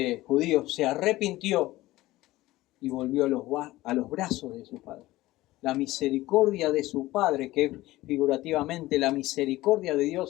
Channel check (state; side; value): quieter; right; 17.5 dB